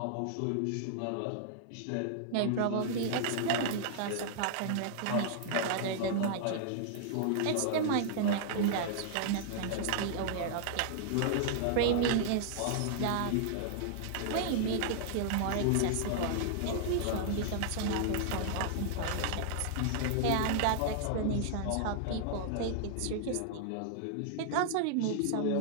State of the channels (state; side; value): different; both; correlation -0.01